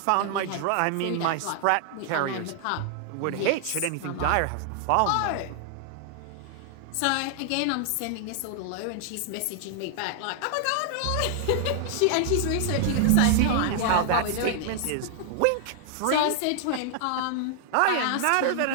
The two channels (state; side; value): different; both; correlation 0.00